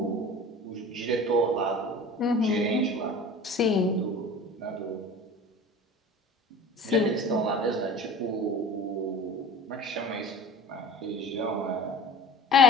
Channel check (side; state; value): both; normal; correlation 0.39